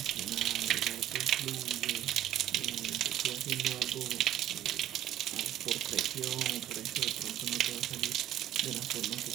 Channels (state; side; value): quieter; left; 12.5 dB